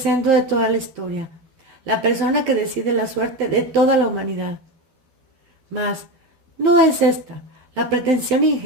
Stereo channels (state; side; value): late; left; 12 ms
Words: de toda la historia, la persona que decide la suerte de toda la humanidad. Mas, ¿no es esta la pretensión